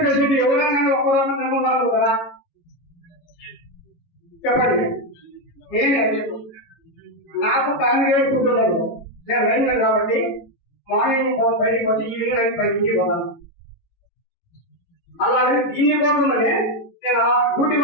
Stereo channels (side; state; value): right; late; 18 ms